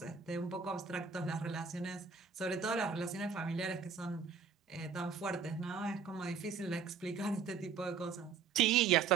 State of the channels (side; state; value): left; quieter; 6.0 dB